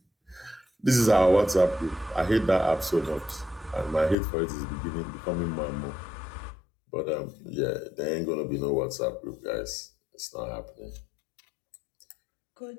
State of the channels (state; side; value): drops out; right; at 4.2 s